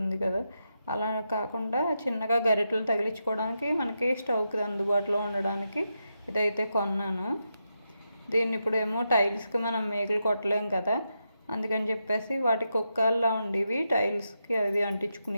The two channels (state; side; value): inverted; both; correlation -0.86